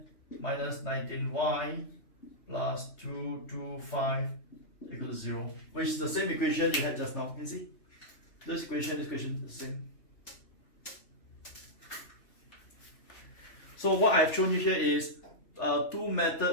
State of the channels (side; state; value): right; late; 3.3 ms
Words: minus 19y plus 225 equals to 0, which is the same equation you had just now. You can see this equation is the same. So what I've shown you here is two